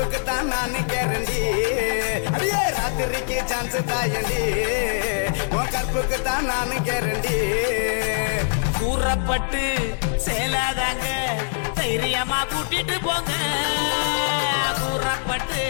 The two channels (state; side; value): silent; right; 63 dB below the other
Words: தான் நான் கேரண்டி, அடியே ராத்திரிக்கு சான்ஸ் தாயண்டி உன் கற்புக்கு தான் நான் கேரண்டி. கூறப்பட்டு சேலாதாங்க தைரியமா கூட்டிட்டு போங்க கூறப்பட்டு